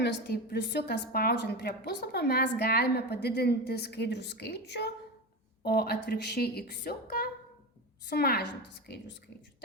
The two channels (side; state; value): both; normal; correlation 0.22